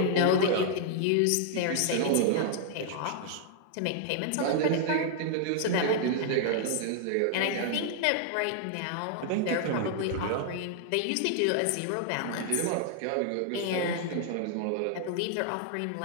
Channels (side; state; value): both; different; correlation -0.01